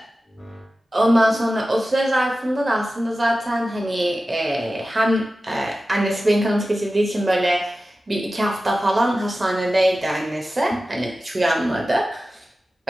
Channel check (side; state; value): both; normal; correlation 0.94